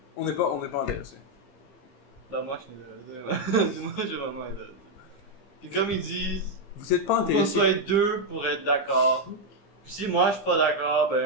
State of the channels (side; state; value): right; late; 15 ms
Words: On n'est pas intéressé. Ben, moi, je suis intéressé. Moi, je suis vraiment intéressé. Puis, comme ils disent, Vous êtes pas faut qu'on intéressé. soit 2 pour être d'accord. Puis, si moi, je suis pas d'accord,